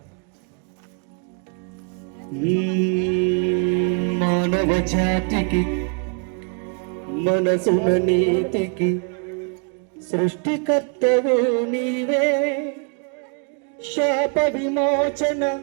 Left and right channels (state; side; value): quieter; left; 38.3 dB